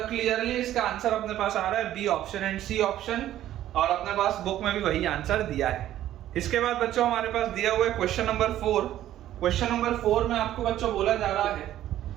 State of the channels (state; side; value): quieter; left; 12.8 dB